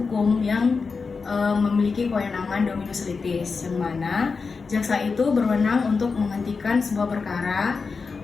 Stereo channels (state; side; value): quieter; right; 4.8 dB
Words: yang memiliki kewenangan dominus litis, yang mana jaksa itu berwenang untuk menghentikan sebuah perkara,